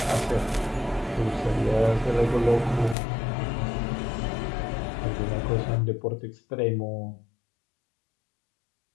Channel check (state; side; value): drops out; right; at 3.0 s